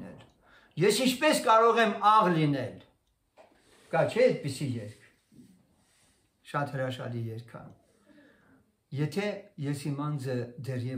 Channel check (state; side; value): identical; both; correlation 1.00